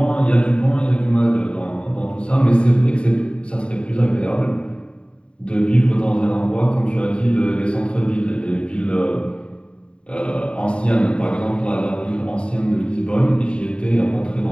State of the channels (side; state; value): right; late; 0.054 ms